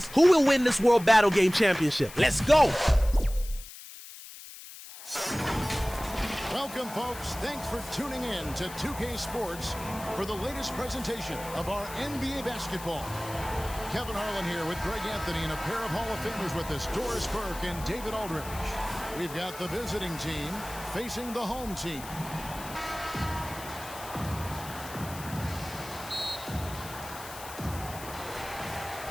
Who will win this World Battle Game Championship? Let's go! Welcome, folks. Thanks for tuning in to 2K Sports for the latest presentation of our NBA basketball. Kevin Harlan here with Greg Anthony and a pair of Hall of Famers with us, Doris Burke and David Aldridge. We've got the visiting team facing the home team.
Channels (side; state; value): left; noise; hiss, 14 dB below the sound